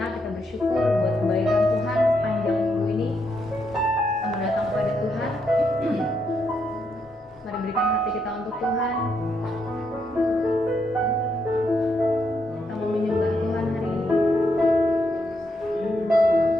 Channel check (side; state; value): both; normal; correlation 0.79